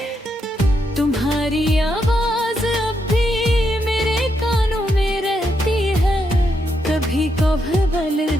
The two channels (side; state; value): both; normal; correlation 0.80